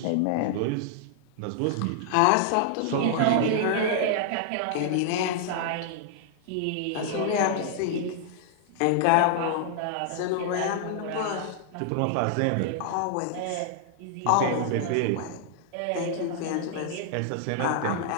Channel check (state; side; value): different; both; correlation -0.01